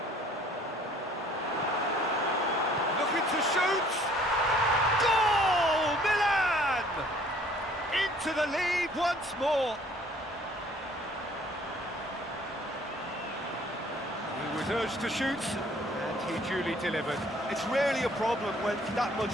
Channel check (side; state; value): both; normal; correlation 0.57